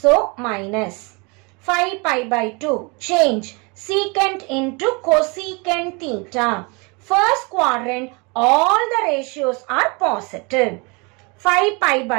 minus 5 pi by 2. Change secant into cosecant theta. 1st quadrant, all the ratios are positive. 5 pi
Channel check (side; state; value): left; quieter; 29.8 dB